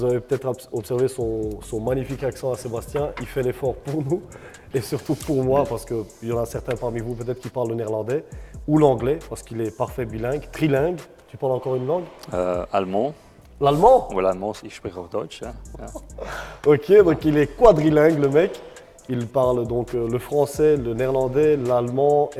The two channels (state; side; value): identical; both; correlation 1.00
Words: avez peut-être observé son magnifique accent à Sébastien. Il fait l'effort pour nous et surtout pour moi parce qu'il y en a certains parmi vous peut-être qui parlent le néerlandais ou l'anglais parce qu'il est parfait bilingue, trilingue. Tu parles encore une langue? Allemand. L'allemand? Oui, l'allemand, ich spreche auch Deutsch. Ok, donc il est quadrilingue le mec. Il parle donc le français, le néerlandais, l'allemand